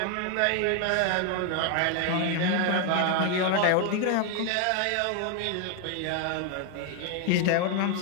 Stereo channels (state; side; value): different; both; correlation 0.01